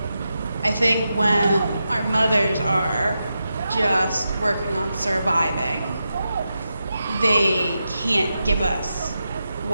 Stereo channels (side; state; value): both; inverted; correlation -0.88